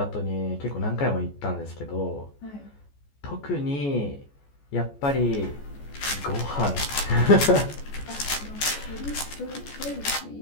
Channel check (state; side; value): late; right; 14 ms